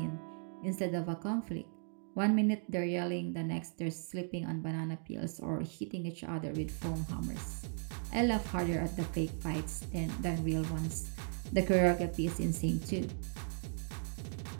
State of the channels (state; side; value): silent; left; 53 dB below the other